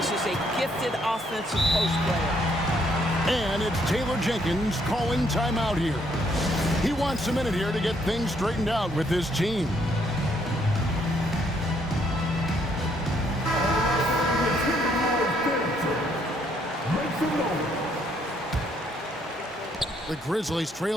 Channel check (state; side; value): normal; both; correlation 0.69